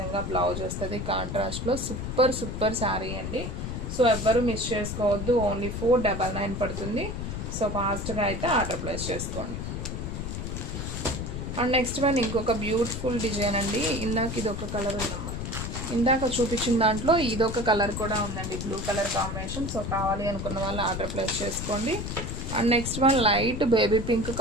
బ్లౌజ్ వస్తుంది కాంట్రాస్ట్లో. సూపర్ సూపర్ శారీ అండి. సో ఎవ్వరూ మిస్ చేసుకోవద్దు. ఓన్లీ 499 పడుతుంది. సో ఫాస్ట్గా అయితే ఆర్డర్ ప్లేస్ చేసుకోండి. అండ్ నెక్స్ట్ వన్ ఇంకొక బ్యూటిఫుల్ డిజైన్ అండి. ఇందాక ఇది ఒక కలర్ ఉందమ్మా, ఇందాక చూపించిన దాంట్లో ఇదొక కలర్ కూడా ఉందండి, బ్లూ కలర్ కాంబినేషన్. సో కావాలి అనుకున్న వాళ్ళు ఆర్డర్ ప్లేస్ చేసుకోండి. And next one light baby pink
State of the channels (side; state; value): left; noise; rumble, 5 dB below the sound